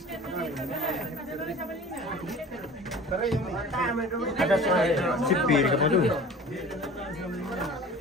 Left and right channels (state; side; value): normal; both; correlation 0.41